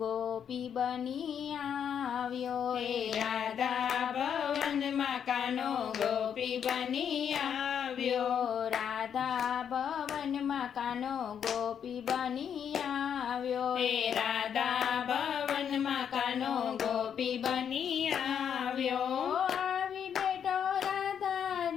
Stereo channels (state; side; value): quieter; right; 8.2 dB